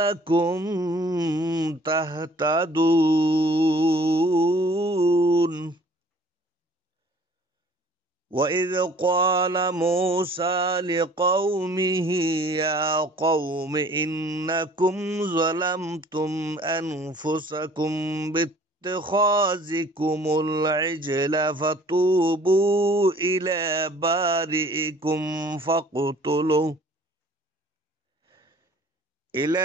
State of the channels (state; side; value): normal; both; correlation 0.53